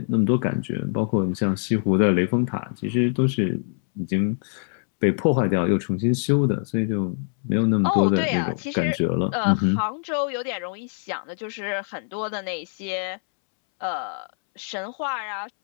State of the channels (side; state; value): right; silent; 63 dB below the other